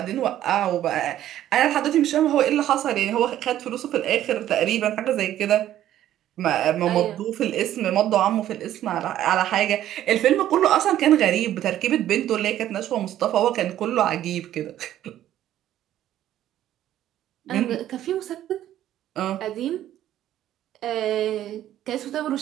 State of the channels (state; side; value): quieter; left; 12.3 dB